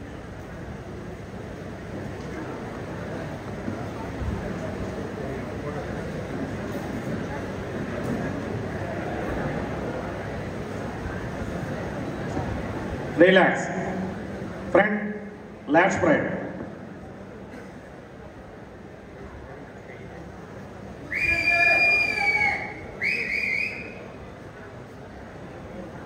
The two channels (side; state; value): both; identical; correlation 1.00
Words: Relax. Front lat spread.